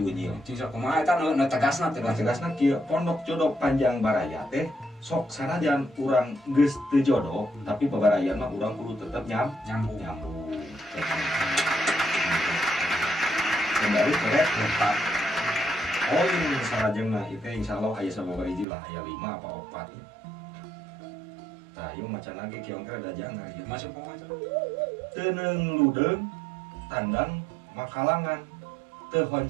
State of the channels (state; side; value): drops out; left; at 18.7 s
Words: Unyil. Bisa kumaha eta nu tegasna teh. Tegasna kieu Pondok Jodoh Panjang Baraya teh sok sanajan urang geus teu jodoh tapi babarayan mah urang kudu tetep nyambung. Kembali ke laptop. Oh ini sarajengna itu insyaallah aya sababaraha hiji lah aya 5 apa 4 ya. Tah ieu macan lagi kieu angker ada jangan ya. Masuk kumaha? Teuneng ludeung tandang makalangan teu